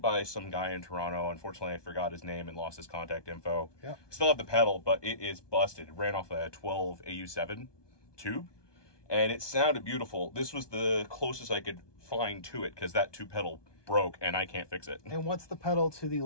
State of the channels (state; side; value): late; right; 1.2 ms